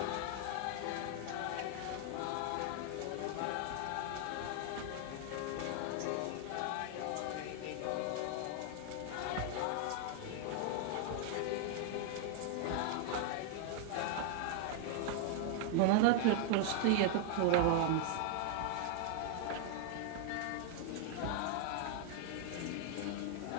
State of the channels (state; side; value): different; both; correlation 0.00